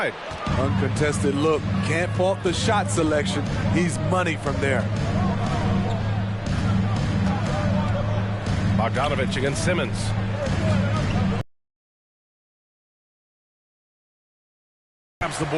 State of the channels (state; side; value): identical; both; correlation 1.00